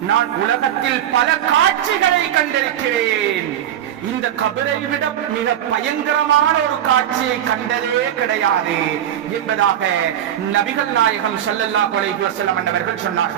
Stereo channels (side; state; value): left; quieter; 10.9 dB